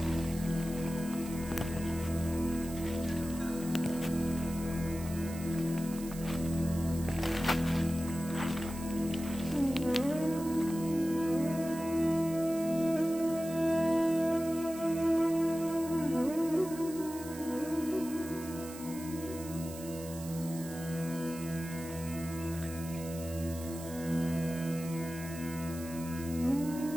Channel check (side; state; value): right; noise; hiss, 14 dB below the sound